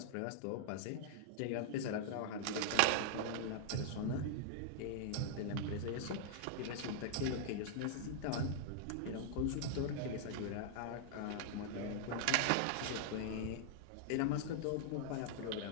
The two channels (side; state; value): both; different; correlation -0.01